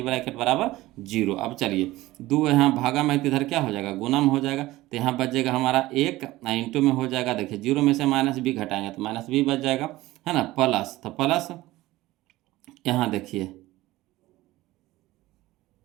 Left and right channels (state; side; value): quieter; left; 17.7 dB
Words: ब्रैकेट बराबर 0। अब चलिए 2 यहाँ भागा में, इधर क्या हो जाएगा गुना में हो जाएगा, तो यहाँ बचेगा हमारा 1, इंटू में हो जाएगा, देखिए 0 में से माइनस b घटाएंगे तो माइनस b बच जाएगा, है ना, प्लस, तो प्लस यहाँ देखिए